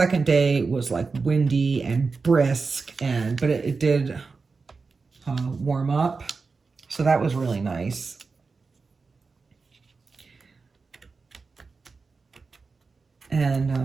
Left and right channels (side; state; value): left; quieter; 4.4 dB